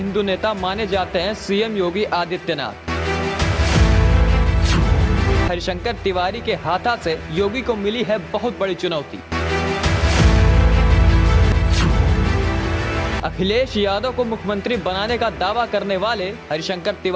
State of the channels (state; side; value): identical; both; correlation 1.00